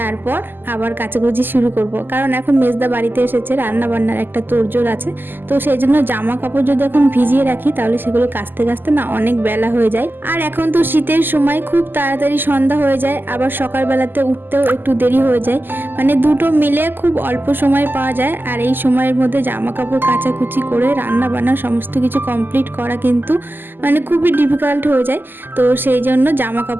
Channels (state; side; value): late; left; 0.093 ms